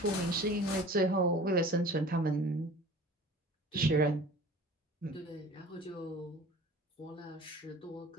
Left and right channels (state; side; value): normal; both; correlation 0.43